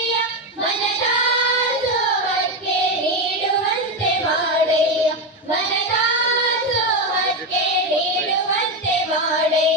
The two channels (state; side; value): normal; both; correlation 0.11